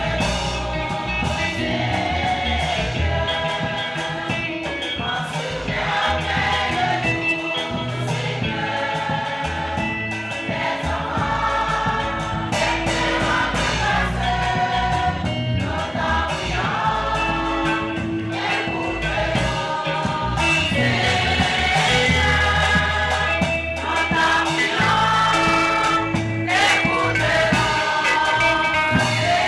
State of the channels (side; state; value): both; identical; correlation 1.00